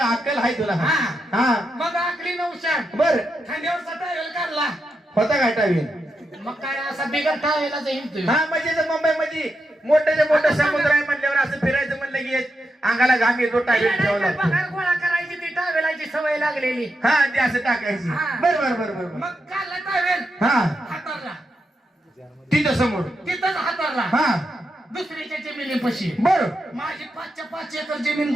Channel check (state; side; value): normal; both; correlation 0.85